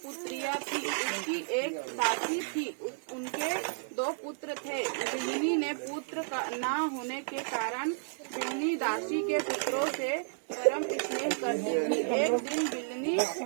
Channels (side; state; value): left; silent; 56 dB below the other